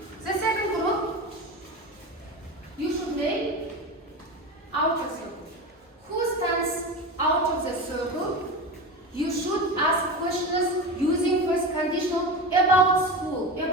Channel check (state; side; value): normal; both; correlation 0.25